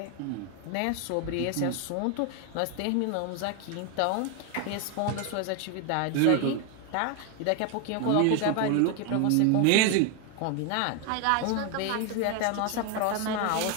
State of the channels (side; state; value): both; different; correlation 0.01